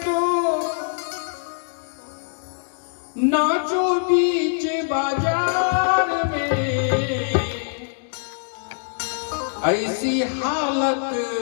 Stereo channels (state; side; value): silent; right; 63 dB below the other